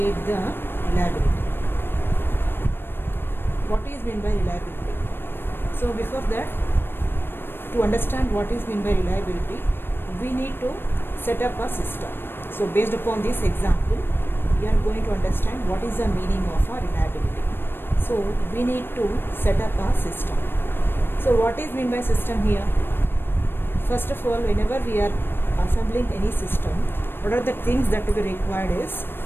the reliability. What is meant by reliability? So before that, to understand what is meant by reliability, we need to set up a system. So based upon this example, we are going to understand what is the meaning of a reliability. So we need to set up a system. So what is meant by system here? First of all, whenever we are assembling any system, what are the things that we required is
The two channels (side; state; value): right; late; 0.10 ms